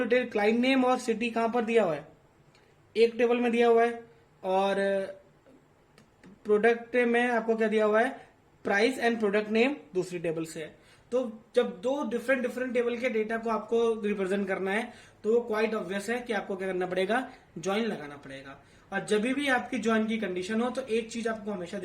क्लाइंट नेम और सिटी कहां पर दिया हुआ है, एक टेबल में दिया हुआ है और प्रोडक्ट में आपको क्या दिया हुआ है, प्राइस एंड प्रोडक्ट नेम दूसरी टेबल से है। तो जब दो डिफरेंट डिफरेंट टेबल के डेटा को आपको रिप्रेजेंट करना है तो वो क्वाइट ऑब्वियस है कि आपको क्या करना पड़ेगा, ज्वाइन लगाना पड़ेगा। और जब भी आपकी ज्वाइन की कंडीशन हो तो एक चीज आपको हमेशा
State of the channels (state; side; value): identical; both; correlation 1.00